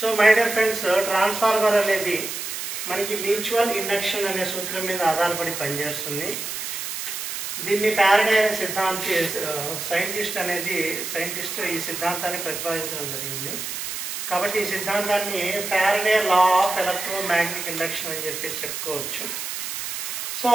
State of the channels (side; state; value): right; noise; hiss, 5 dB below the sound